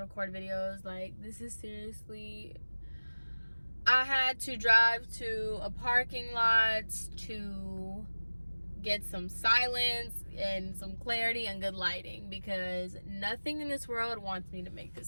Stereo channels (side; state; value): both; inverted; correlation -1.00